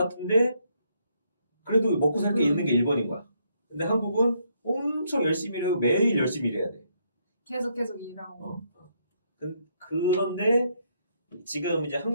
그래도 먹고 살 게 있는 게 일본인 거야. 근데 한국은 엄청 열심히 일하고 매일 열심히 일해야 돼. 계속 일하고. 그런데 지금 이제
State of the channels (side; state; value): both; inverted; correlation -0.73